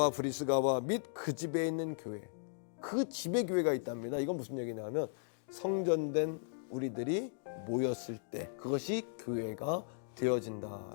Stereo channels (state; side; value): silent; right; digital silence